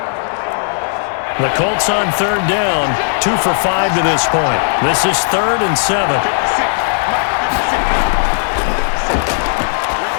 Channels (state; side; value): silent; right; digital silence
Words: The Colts on 3rd down, 2 for 5 to this point. This is 3rd and 7.